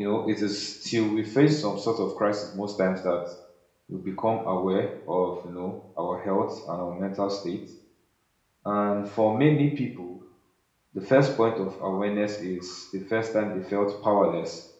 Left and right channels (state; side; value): identical; both; correlation 1.00